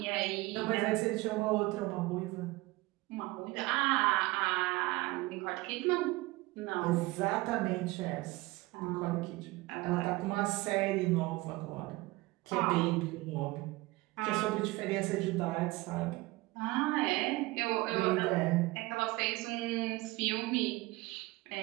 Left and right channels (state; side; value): quieter; left; 20.9 dB